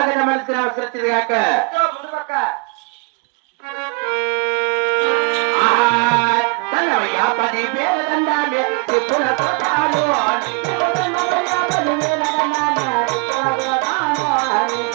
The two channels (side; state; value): left; quieter; 30.6 dB